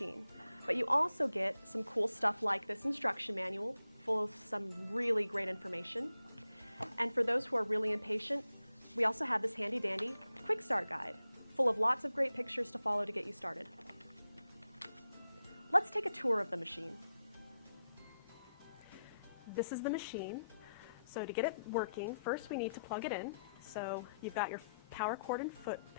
but you also get some cool stuff like this instruction manual full of some really great information. And for those who are really impatient, we also have this handy dandy quick start guide full of lots of great pictures to follow to get you started. Let's take a tour of the machine. This is the machine. So to get it working, first we need to plug it in. So you've got your power cord and foot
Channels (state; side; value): inverted; both; correlation -0.85